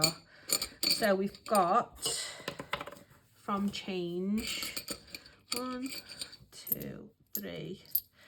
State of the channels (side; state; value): both; identical; correlation 1.00